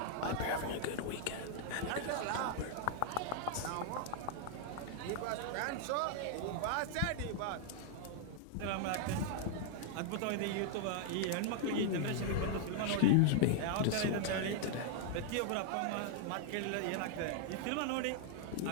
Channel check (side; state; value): both; different; correlation 0.00